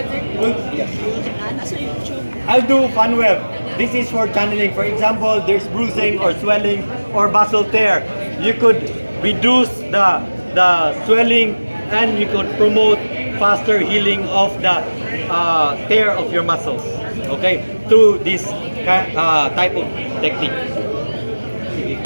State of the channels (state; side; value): inverted; both; correlation -1.00